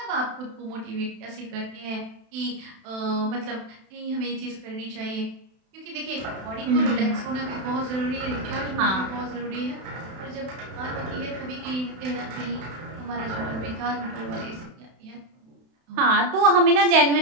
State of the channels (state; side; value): late; left; 32 ms